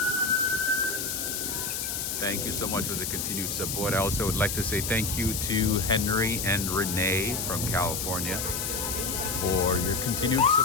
Thank you so much for the continued support. I also would like to say thank you to Henry and Renee from California for your continued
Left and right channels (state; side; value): noise; left; hiss, 2 dB below the sound